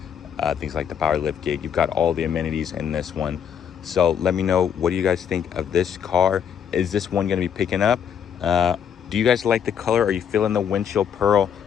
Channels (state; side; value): quieter; right; 8.2 dB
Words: things like the power lift gate. You've got all the amenities in this one. So let me know, what do you guys think of this car? Is this one going to be picking up? Do you guys like the color? Are you feeling the windshield pearl?